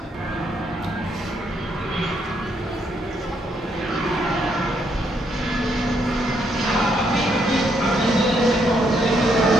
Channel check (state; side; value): normal; both; correlation 0.74